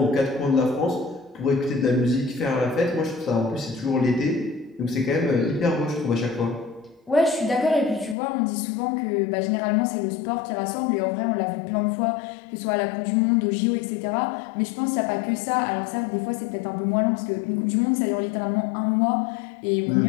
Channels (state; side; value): drops out; right; at 8.2 s